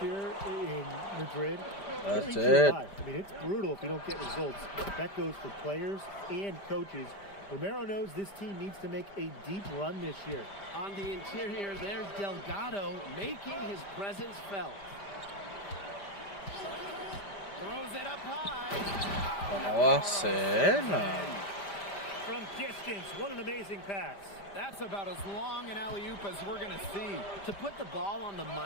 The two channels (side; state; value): right; late; 5.0 ms